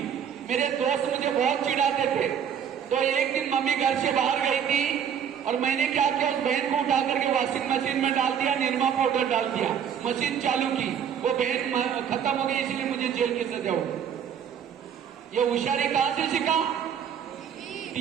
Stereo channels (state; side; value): quieter; left; 8.3 dB